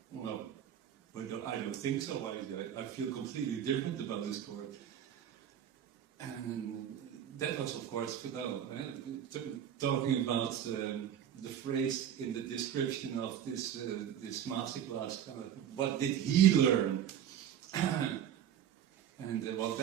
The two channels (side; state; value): left; quieter; 9.8 dB